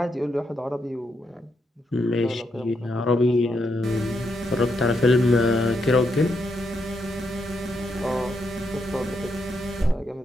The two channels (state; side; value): normal; both; correlation 0.80